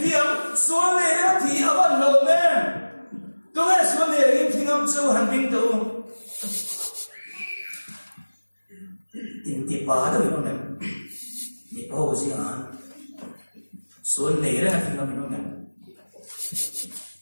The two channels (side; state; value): both; inverted; correlation -1.00